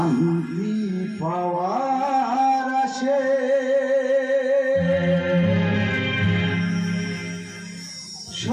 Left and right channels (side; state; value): both; identical; correlation 1.00